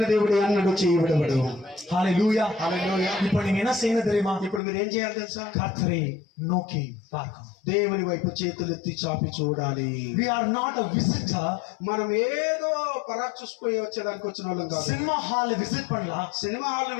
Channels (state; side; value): drops out; right; at 4.6 s